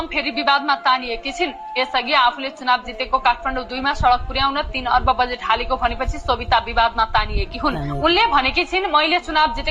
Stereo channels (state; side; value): identical; both; correlation 1.00